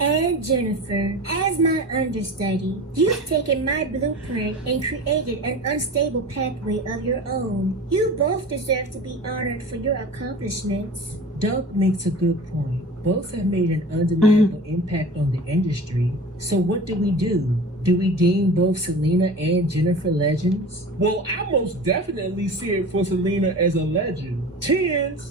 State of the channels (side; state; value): both; normal; correlation 0.36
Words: And Jennifer, as my understudy, you've taken my blueprint and created an unstable pathway of your own. You both deserve to be honored for your accomplishments. Doug makes a good point. Both have made an undeniable impact on the industry. So what do? Do we deem both Selena and Jennifer legends? Well, I most definitely see it for Selena as a legend.